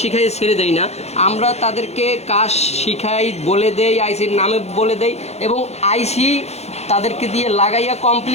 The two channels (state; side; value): late; right; 0.31 ms